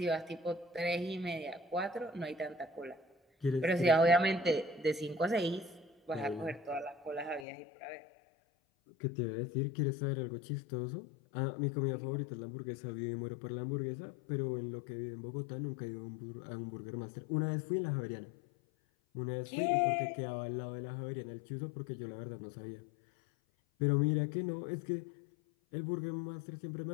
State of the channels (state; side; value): drops out; right; at 7.5 s